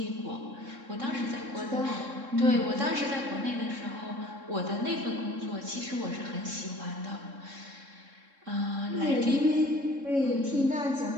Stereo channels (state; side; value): late; left; 3.7 ms